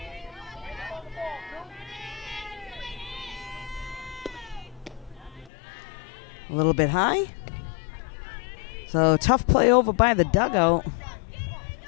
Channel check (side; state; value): right; drops out; at 5.5 s